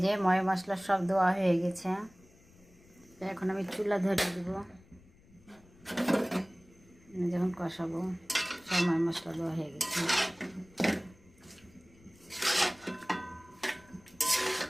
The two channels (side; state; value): left; noise; rumble, 27 dB below the sound